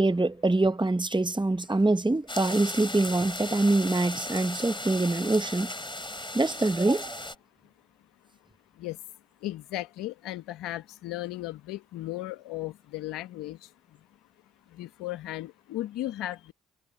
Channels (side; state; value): both; normal; correlation 0.82